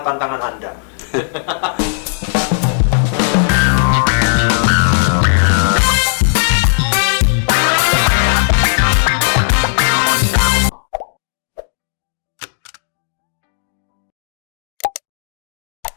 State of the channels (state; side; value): silent; right; digital silence